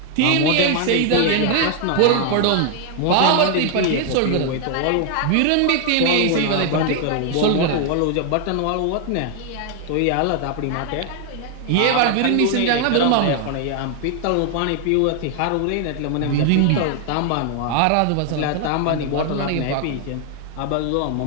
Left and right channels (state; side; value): different; both; correlation 0.00